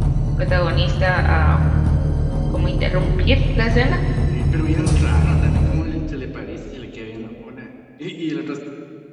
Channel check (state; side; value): identical; both; correlation 1.00